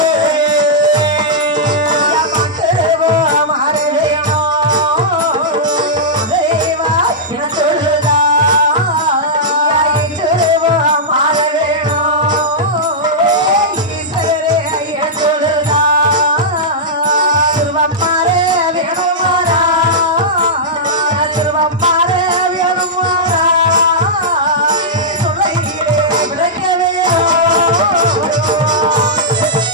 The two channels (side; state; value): both; normal; correlation -0.11